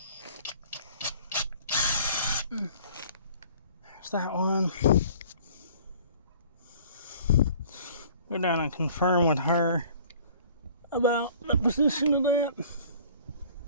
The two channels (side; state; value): both; inverted; correlation -0.51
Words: There's that one. Go down and confirm with her about the position of that.